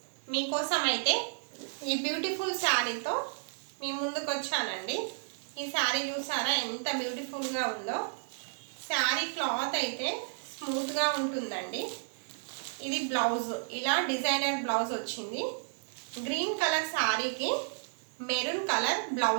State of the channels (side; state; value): left; silent; digital silence